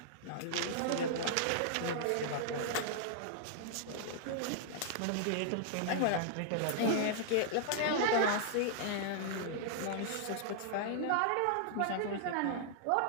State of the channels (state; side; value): different; both; correlation -0.01